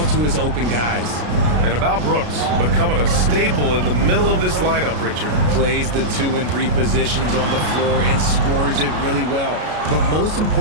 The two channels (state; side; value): late; left; 33 ms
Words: to his open guys. And about Brooks, becoming a staple in the middle of this lineup, Richard. Plays the 2 and 3 positions on the floor and scores it really well. But most